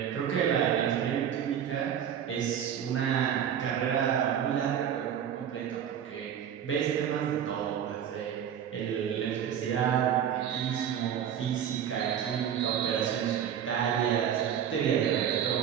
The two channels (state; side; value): quieter; left; 9.1 dB